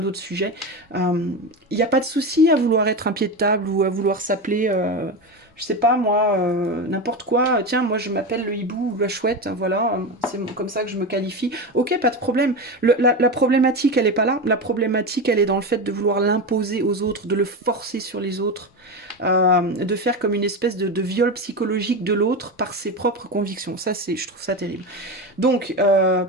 d'autres sujets. Il n'y a pas de souci à vouloir être un pied de table ou à vouloir s'appeler, je sais pas moi, n'importe quoi. Tiens, moi je m'appelle le hibou ou la chouette, voilà, c'est comme ça que je me qualifie. Ok, pas de problème. La problématique, elle est pas là. La problématique, elle est dans le fait de vouloir l'imposer aux autres, de le forcer sur les autres, de faire comme une espèce de viol psychologique de l'autre par ses propres convictions. Ça, je trouve ça terrible. Donc,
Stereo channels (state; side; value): normal; both; correlation 0.20